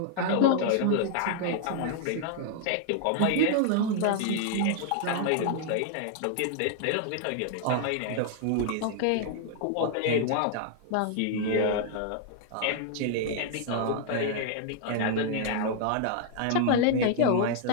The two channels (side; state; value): both; different; correlation 0.00